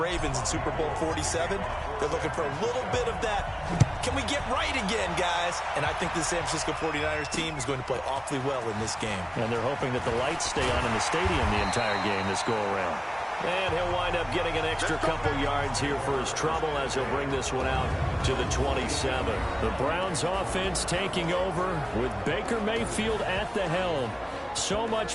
in Super Bowl 47. They're looking for a little bit of that. Can we get right again, guys? And I think the San Francisco 49ers team is going to play awfully well in this game. And they're hoping that the lights stay on in the stadium the entire game this go-around. And he'll wind up getting an extra couple yards here for his trouble as he'll bring this one out to the 27. The Browns offense taking over with Baker Mayfield at the helm. So much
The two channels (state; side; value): identical; both; correlation 1.00